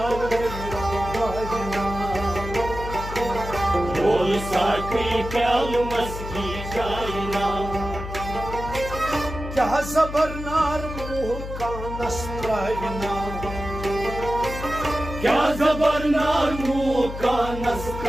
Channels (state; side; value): noise; left; hum, 8 dB below the sound